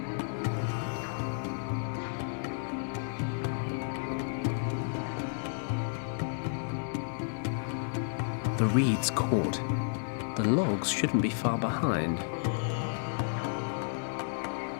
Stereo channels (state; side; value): silent; right; 56 dB below the other